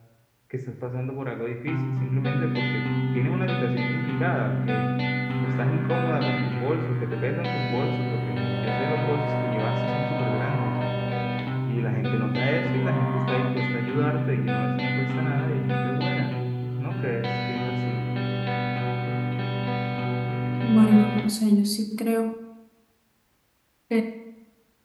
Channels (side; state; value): both; identical; correlation 1.00